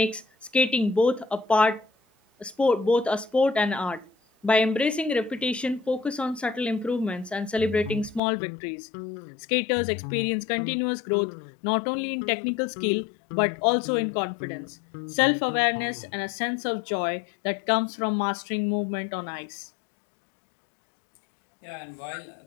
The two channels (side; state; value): right; drops out; at 8.2 s